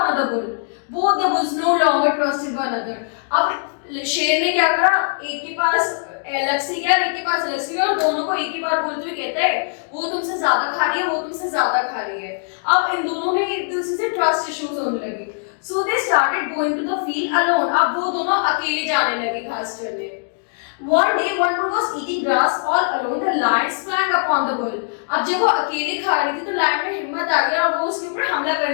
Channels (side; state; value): right; silent; digital silence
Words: another bull. Both the bulls no longer trusted one another. अब शेर ने क्या करा, एक के पास अलग से गया, एक के पास अलग से गया, और दोनों को एक ही बार बोलते हुए कहता है वो तुमसे ज्यादा खा रही है, वो तुमसे ज्यादा खा रही है। अब इन दोनों में एक दूसरे से ट्रस्ट इश्यूज होने लगे। So they started going to the field alone. अब वो दोनों अकेले जाने लगे घास चरने। One day one bull was eating grass all alone. The lion sprang upon the bull. अब जब वो अकेले खा रही थी तो लायन में हिम्मत आ गया और वो उसके ऊपर हमला